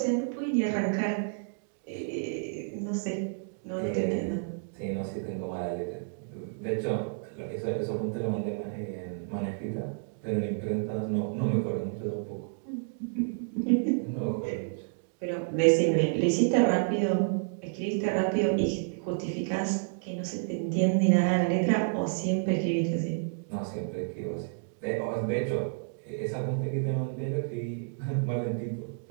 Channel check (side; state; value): left; silent; digital silence